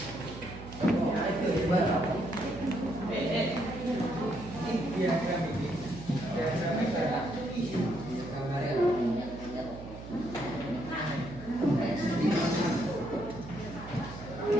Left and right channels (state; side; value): noise; right; hum, 13 dB below the sound